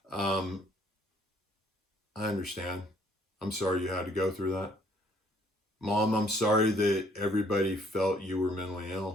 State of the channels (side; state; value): both; normal; correlation 0.63